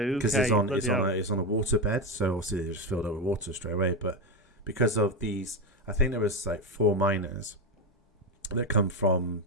Because it's on a waterbed, so obviously they just filled up with water straight away. But because of these, I think there was like 4 miners that come from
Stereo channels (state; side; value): normal; both; correlation 0.13